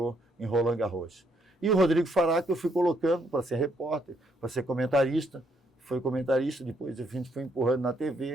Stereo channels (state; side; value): normal; both; correlation 0.72